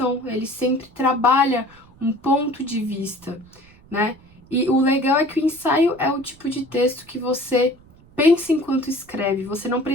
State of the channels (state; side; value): noise; right; rumble, 26 dB below the sound